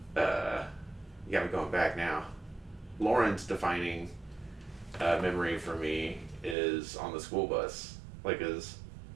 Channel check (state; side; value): drops out; left; at 6.6 s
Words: yeah, I'm going back now. Lauren's defining memory for me is on the school bus, like as